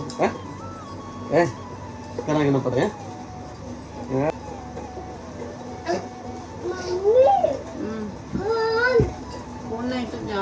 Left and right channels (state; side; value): identical; both; correlation 1.00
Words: है, करा के ना पड़े हैं? फोन नहीं तो